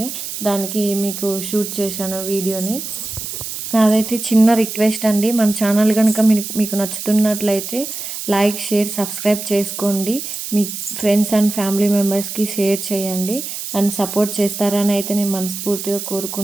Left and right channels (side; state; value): right; noise; hiss, 7 dB below the sound